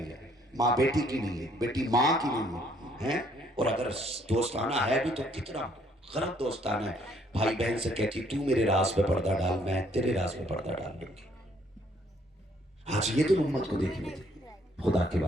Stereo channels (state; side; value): normal; both; correlation 0.65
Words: है, माँ बेटी की नहीं है, बेटी माँ की नहीं है, हैं? और अगर दोस्ताना है भी तो कितना गलत दोस्ताना है। भाई बहन से कहती तू मेरे राज पे पर्दा डाल, मैं तेरे राज पे पर्दा डाल दूंगी। आज ये तो उम्मत को देखने थे। खुदा के